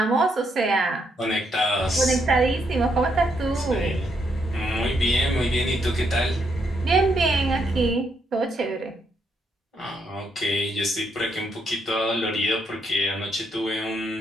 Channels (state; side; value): normal; both; correlation 0.76